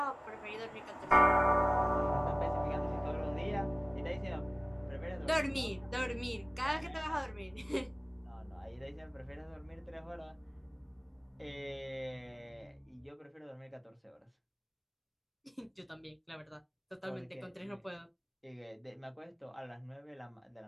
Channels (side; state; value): both; identical; correlation 1.00